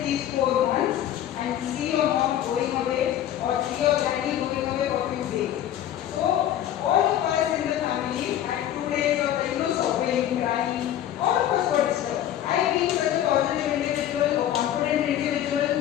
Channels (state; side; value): quieter; right; 11.5 dB